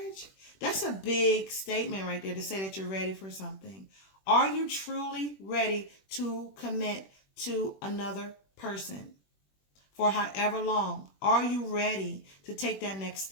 That's a big statement right there to say that you're ready for something. Are you truly ready to commit to another person for however long? Are you ready to take that next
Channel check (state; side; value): late; right; 21 ms